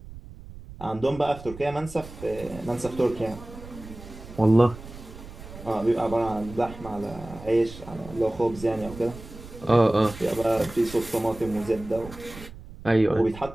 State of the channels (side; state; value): right; noise; rumble, 15 dB below the sound